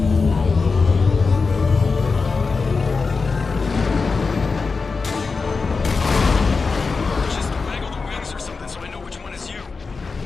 Just waggle the wings or something so I know which one is you.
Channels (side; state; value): right; quieter; 4.5 dB